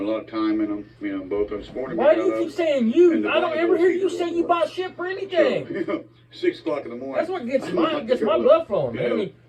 a lot of time in them. Both of us. Morning Why we do got you keep up, saying you? and the I don't Bible ever hear is you equal say you to buy us. shit for anything. So, 6 o'clock in the morning. That's what gets I'm my about to go blood flowing, you man. I know, mean,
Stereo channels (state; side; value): identical; both; correlation 1.00